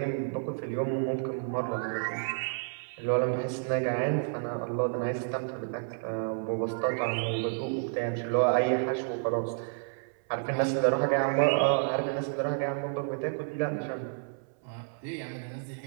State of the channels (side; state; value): left; silent; 58 dB below the other